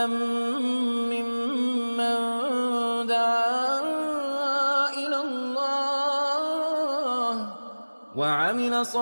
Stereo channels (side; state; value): both; inverted; correlation -1.00